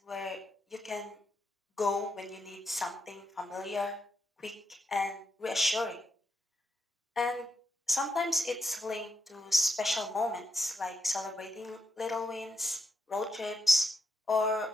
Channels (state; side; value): normal; both; correlation 0.82